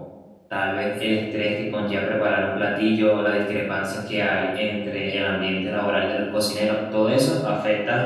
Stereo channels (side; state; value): both; identical; correlation 1.00